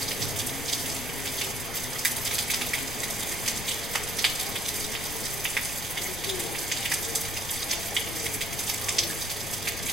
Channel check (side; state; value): left; noise; rumble, 9 dB below the sound